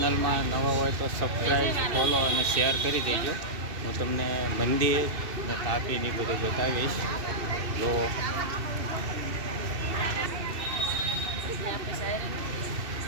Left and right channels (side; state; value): left; late; 2.7 ms